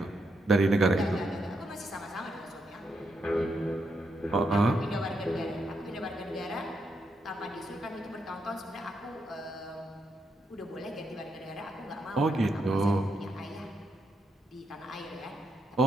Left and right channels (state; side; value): normal; both; correlation 0.80